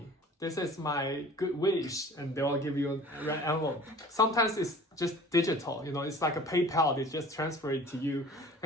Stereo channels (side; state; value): both; normal; correlation 0.45